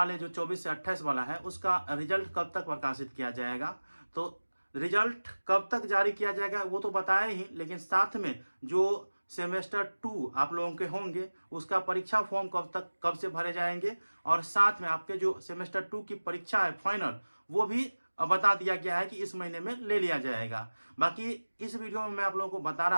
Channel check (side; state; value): both; inverted; correlation -1.00